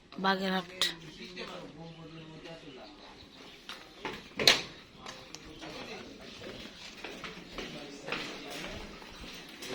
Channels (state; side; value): identical; both; correlation 1.00